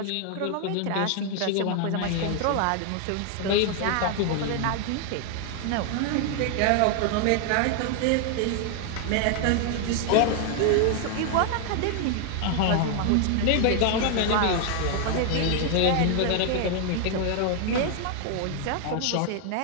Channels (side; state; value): both; different; correlation 0.00